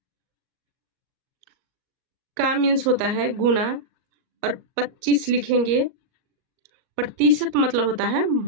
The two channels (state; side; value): late; left; 38 ms